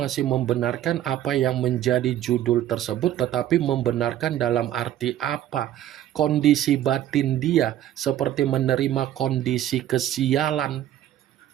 membenarkan apa yang menjadi judul tersebut, tetapi membenarkan dalam arti apa? Kondisi batin dia seperti menerima kondisi kesialan.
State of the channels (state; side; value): quieter; left; 12.1 dB